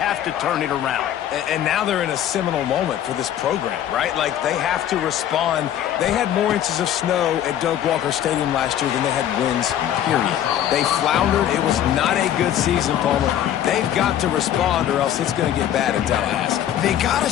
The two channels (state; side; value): quieter; right; 10.9 dB